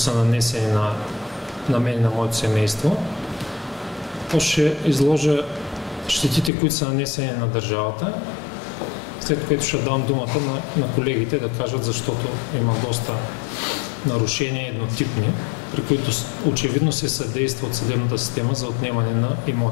нанесени на мен и на моето семейство. После ще изложа щетите, които са нанесени на държавата, след което ще дам думата на колегите да кажат, защото има доста нарушения еднотипни, при които очевидно се съдейства от съдебната система за отнемане на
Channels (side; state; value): right; drops out; at 6.5 s